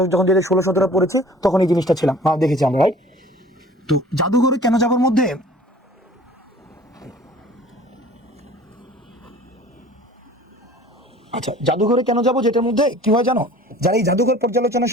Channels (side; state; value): both; normal; correlation 0.47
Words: যখন 16-17 পড়েছি তখন এই জিনিসটা ছিলাম, দেখেছি আমরা, রাইট? তো জাদুঘরে কেন যাবার মধ্যে আচ্ছা, জাদুঘরে কেন যাব যেটার মধ্যে কি হয় জানো, যারা এই জাদুঘর পর্যালোচনার